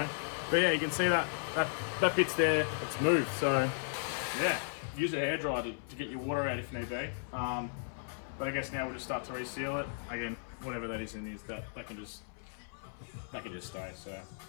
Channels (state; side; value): silent; right; 54 dB below the other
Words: But yeah, you can see that bit's there, it's moved, so yeah, use a hairdryer to get your water out if need be. But I guess now we'll just start to reseal it. Again, whatever that is in this, that can just stay, so